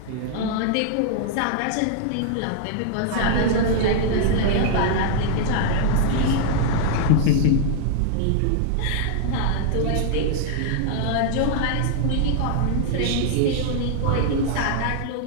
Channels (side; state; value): both; different; correlation 0.00